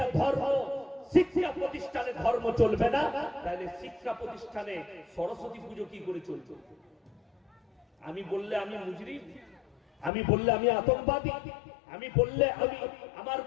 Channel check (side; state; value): right; drops out; at 10.1 s